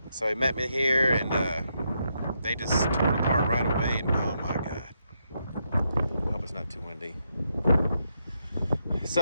So he met me here, and they just tore it apart right away. And oh my God. I hope it's not too windy.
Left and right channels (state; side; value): inverted; both; correlation -0.80